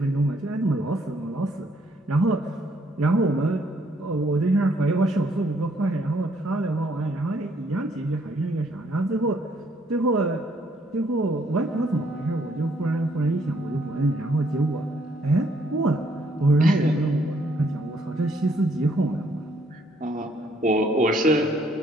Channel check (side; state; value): both; normal; correlation 0.68